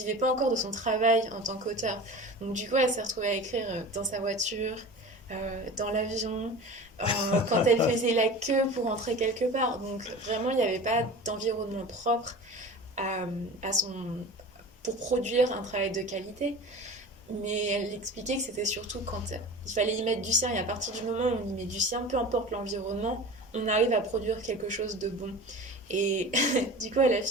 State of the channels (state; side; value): normal; both; correlation 0.35